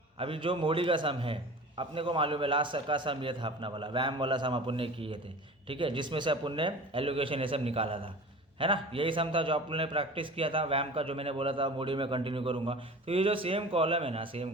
अभी जो मोडी का सम है अपने को मालूम है, लास्ट का सम ये था अपना वाला, वैम वाला सम अपन ने किए थे, ठीक है, जिसमें से अपन ने एलोकेशन ये सब निकाला था, है ना। यही सम था जो अपन ने प्रैक्टिस किया था वैम का, जो मैंने बोला था मोडी में कंटिन्यू करूँगा। तो ये जो सेम कॉलम है ना, सेम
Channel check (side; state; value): both; normal; correlation 0.38